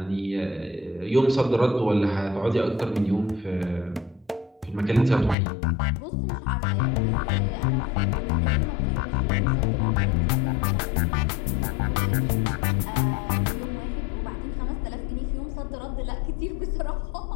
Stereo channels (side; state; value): right; drops out; at 5.4 s